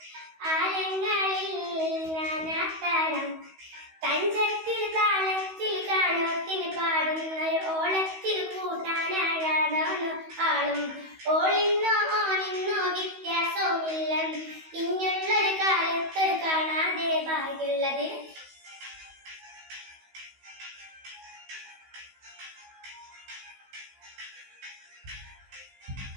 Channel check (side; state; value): left; late; 16 ms